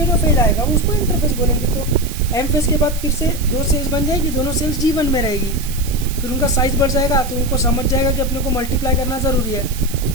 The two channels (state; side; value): noise; right; hiss, 12 dB below the sound